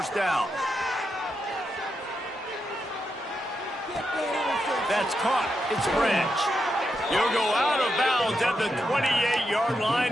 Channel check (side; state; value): both; normal; correlation 0.85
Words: down. That's caught. It's Branch. You'll go out of bounds at the 28-yard